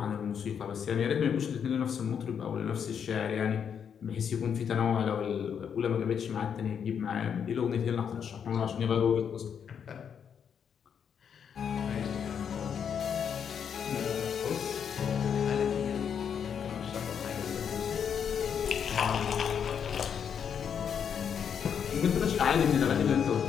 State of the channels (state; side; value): quieter; right; 7.6 dB